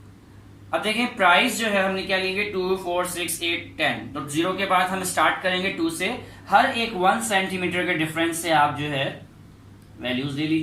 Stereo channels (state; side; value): identical; both; correlation 1.00